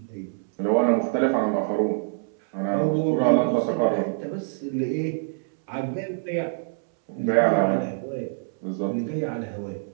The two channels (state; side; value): silent; left; 62 dB below the other